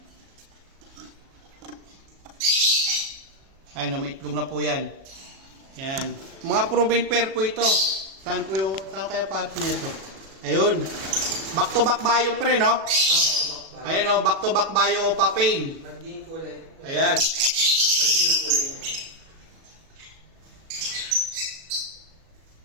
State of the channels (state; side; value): late; left; 37 ms